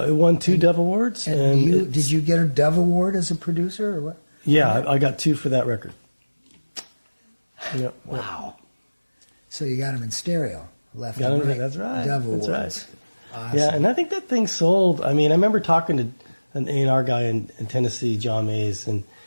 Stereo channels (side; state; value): both; inverted; correlation -1.00